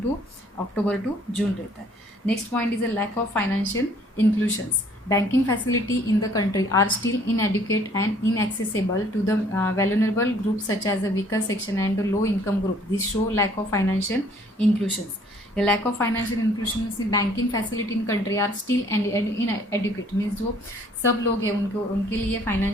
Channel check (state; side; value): normal; both; correlation 0.59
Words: टू अक्टूबर टू जून रहता है। Next point is a lack of financial inclusions. Banking facility in the country are still inadequate and inaccessible to the vulnerable groups such as the weaker section and the low income group. This show lack of financial inclusions. The lack of financial inclusion in banking facility in country are still inadequate means जो सब लोग हैं उनके लिए